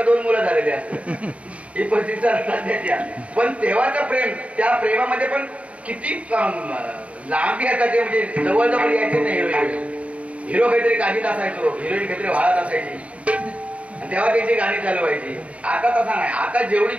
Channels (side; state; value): left; late; 0.065 ms